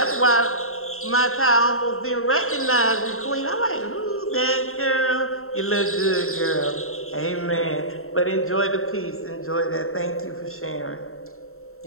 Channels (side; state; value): right; late; 0.62 ms